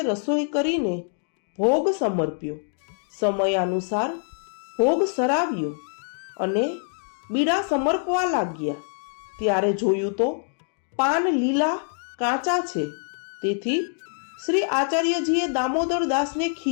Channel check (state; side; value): silent; right; 60 dB below the other